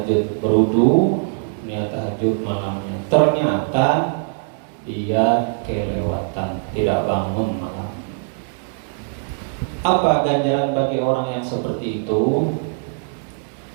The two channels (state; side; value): silent; left; digital silence